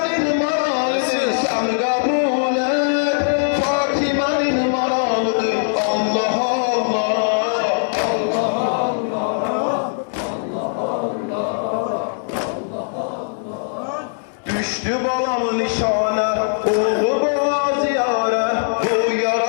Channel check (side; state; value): right; silent; digital silence